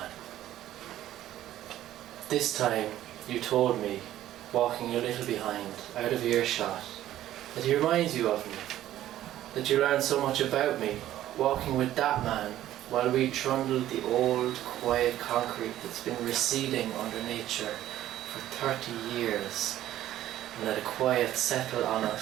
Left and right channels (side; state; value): left; quieter; 13.2 dB